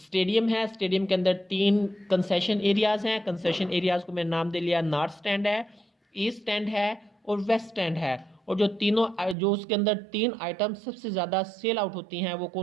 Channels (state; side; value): drops out; left; at 9.3 s